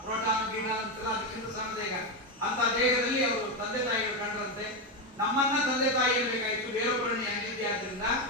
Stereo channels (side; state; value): both; normal; correlation 0.10